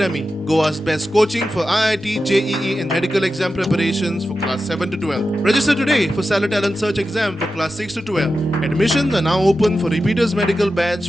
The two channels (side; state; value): both; normal; correlation 0.92